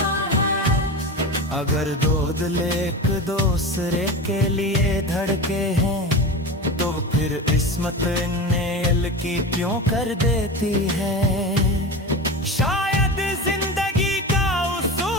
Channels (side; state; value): both; normal; correlation 0.27